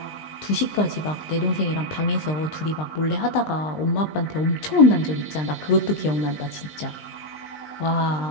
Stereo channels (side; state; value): right; late; 20 ms